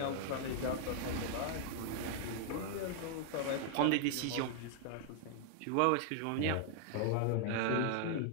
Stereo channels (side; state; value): both; different; correlation 0.00